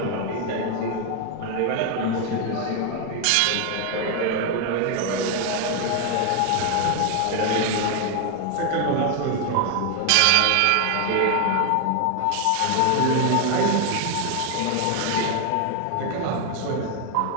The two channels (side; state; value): both; different; correlation 0.01